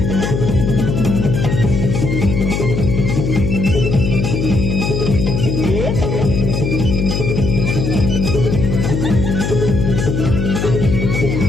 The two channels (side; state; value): left; noise; hum, 1 dB below the sound